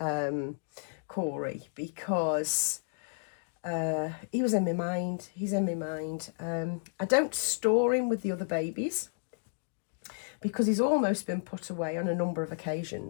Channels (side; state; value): right; silent; digital silence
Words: Corey because he was in my mind. He's in my mind. I don't store him with the other babies. because he's almost been put away on a number of